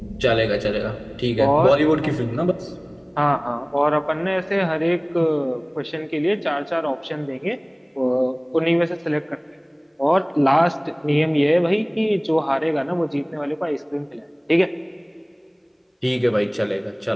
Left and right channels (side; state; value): both; identical; correlation 1.00